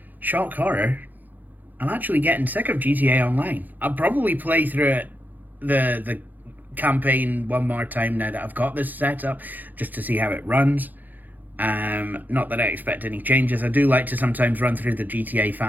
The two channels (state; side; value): late; left; 0.085 ms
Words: shock horror, I'm actually getting sick of GTA Online. I'll probably play through it, the campaign one more time now that I've got this set up, just to see how it runs. Not that I expect any changes. I do like to sometimes run through the GTA